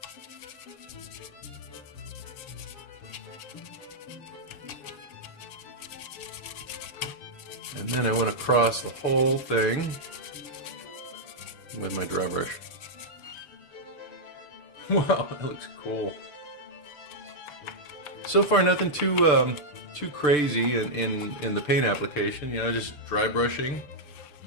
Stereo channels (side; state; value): right; late; 6.7 ms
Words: And then I went across the whole thing with my dry brush. Wow, that looks cool. So far, nothing too crazy in the paint application. You know, just dry brushing.